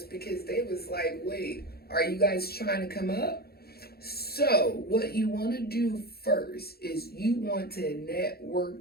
because they was like, wait, are you guys trying to come up? So what you want to do first is you want to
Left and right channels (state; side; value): late; right; 0.45 ms